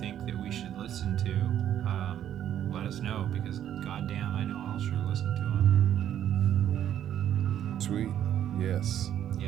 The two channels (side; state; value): left; quieter; 10.6 dB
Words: think that we should listen to, let us know, because goddamn, I know I'll sure listen to them. Sweet. Yes.